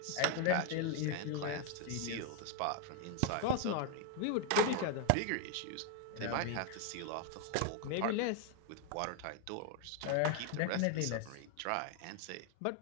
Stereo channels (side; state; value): both; different; correlation 0.00